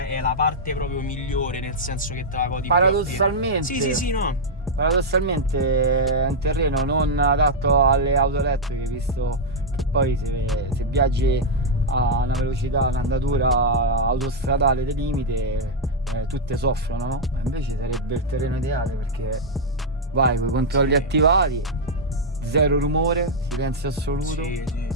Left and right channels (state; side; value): normal; both; correlation -0.03